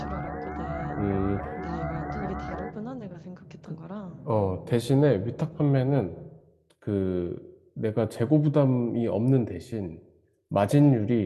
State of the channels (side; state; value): both; identical; correlation 1.00